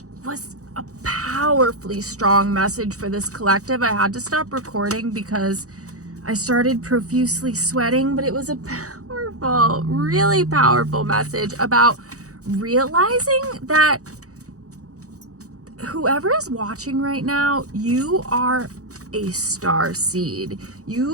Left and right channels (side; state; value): left; late; 0.66 ms